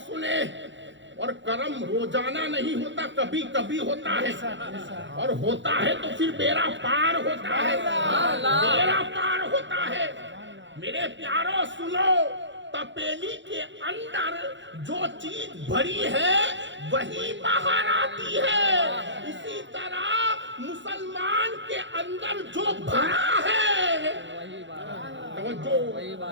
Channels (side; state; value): left; late; 0.54 ms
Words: سنے. اور کرم روزانہ نہیں ہوتا, کبھی کبھی ہوتا ہے, اور ہوتا ہے تو پھر بیڑا پار ہوتا ہے. بیڑا پار ہوتا ہے. میرے پیاروں سنو, تپیلی کے اندر جو چیز بھری ہے وہی باہر آتی ہے. اسی طرح مسلمان کے اندر جو بھرا ہے, توجہ,